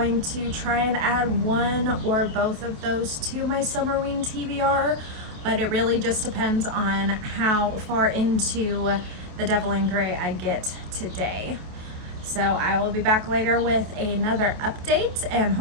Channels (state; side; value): late; left; 28 ms